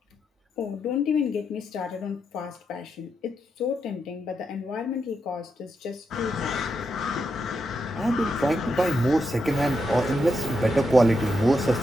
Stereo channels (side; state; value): both; normal; correlation 0.84